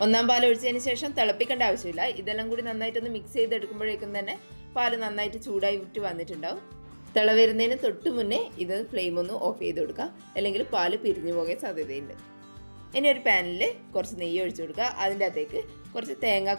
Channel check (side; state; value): both; inverted; correlation -1.00